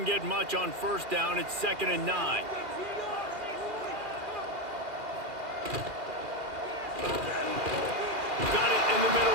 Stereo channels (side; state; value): left; late; 2.4 ms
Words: get much on first down. It's 2nd and 9. Got it in the